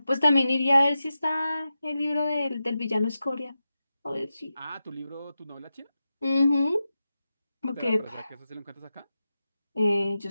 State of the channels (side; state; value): both; inverted; correlation -0.91